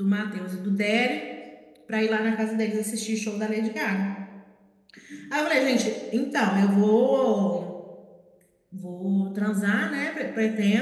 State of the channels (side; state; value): both; identical; correlation 1.00